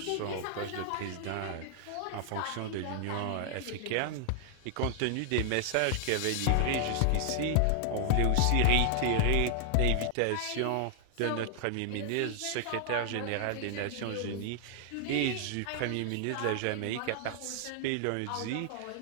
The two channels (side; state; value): both; different; correlation 0.00